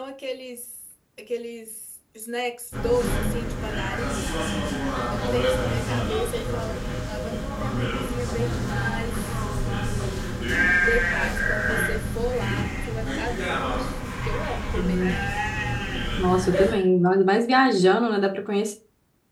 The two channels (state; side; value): identical; both; correlation 1.00